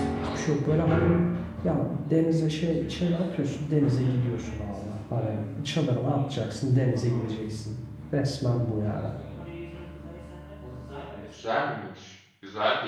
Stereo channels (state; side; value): identical; both; correlation 1.00